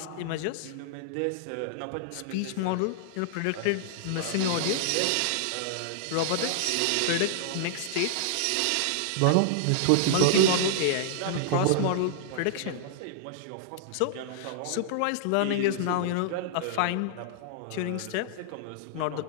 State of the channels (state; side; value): different; both; correlation -0.01